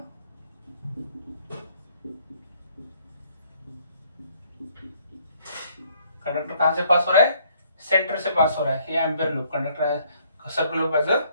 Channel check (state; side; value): inverted; both; correlation -0.65